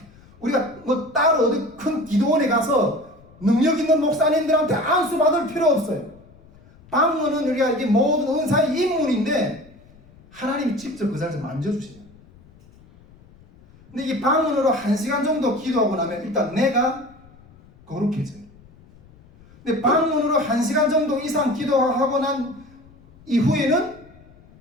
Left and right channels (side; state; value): left; noise; rumble, 25 dB below the sound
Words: 우리가 뭐 따로 어디 큰 기도원에 가서 능력 있는 목사님들한테 안수 받을 필요 없어요. 방언은 우리가 이게 모든 은사의 인물인데 하나님이 직접 그 자리에서 만져주세요. 근데 이 방언으로 1시간 정도 기도하고 나면 일단 내가 거룩해져요. 근데 방언으로 1시간 정도 이상 기도하고 난 이후에는